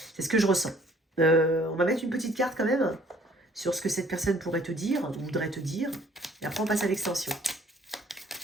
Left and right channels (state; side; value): normal; both; correlation 0.58